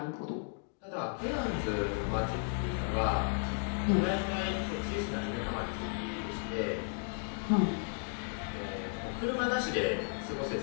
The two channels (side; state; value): right; silent; 55 dB below the other